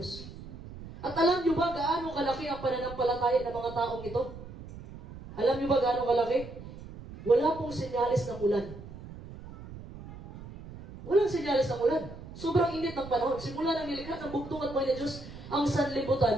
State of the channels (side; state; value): right; noise; rumble, 14 dB below the sound